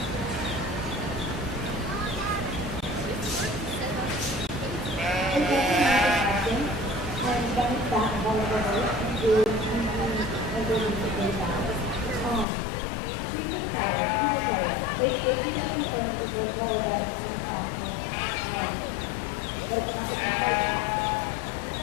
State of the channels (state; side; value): drops out; right; at 12.5 s